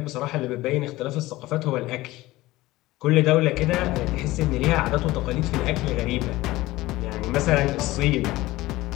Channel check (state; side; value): quieter; right; 18.3 dB